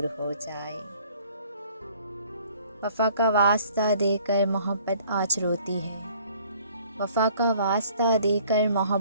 हो जाए। वफा का वास्ता देकर मोहब्बत आज रोती है, वफा का वास्ता देकर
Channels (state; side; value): inverted; both; correlation -0.56